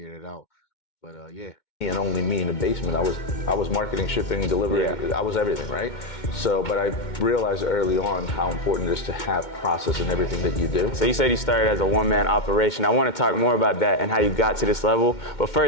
it out. But yeah. And only me in the basement. I was marketing, shipping, delivery. Yeah. I was everything, right? So, but I realized early on how important it is to have process in everything that you do. So you said you started as a one-man operation. I want to talk more about that and how you got to this level. But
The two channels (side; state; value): right; late; 2.2 ms